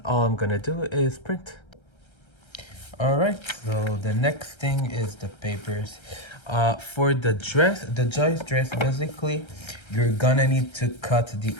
all I'm gonna do is print. All right, so the next thing is the papers. For the dress, the Joyce dress, basically, you're gonna need to cut the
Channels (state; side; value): late; right; 1.3 ms